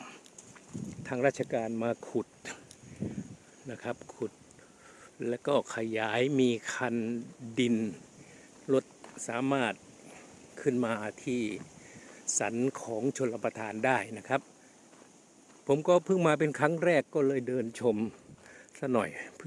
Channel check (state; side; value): identical; both; correlation 1.00